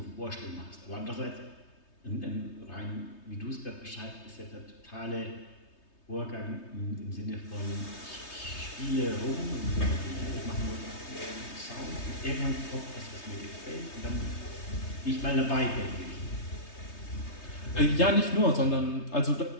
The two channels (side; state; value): right; late; 3.3 ms